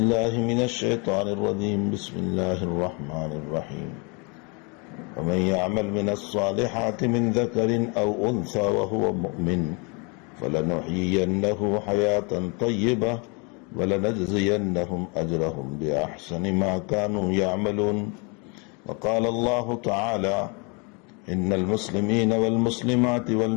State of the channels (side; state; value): right; quieter; 32.4 dB